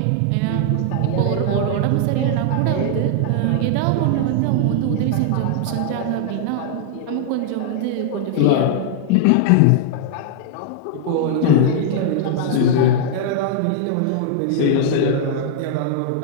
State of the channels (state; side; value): different; both; correlation -0.01